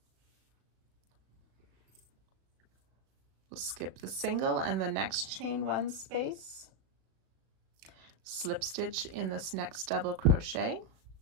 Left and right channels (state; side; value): late; left; 36 ms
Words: We'll skip the single and the next chain 1 space, slip stitch in this next double crochet,